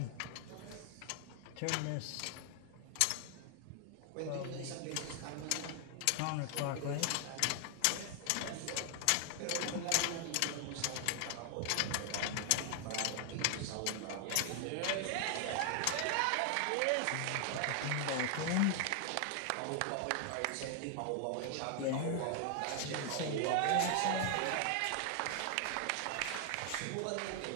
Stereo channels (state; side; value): different; both; correlation 0.00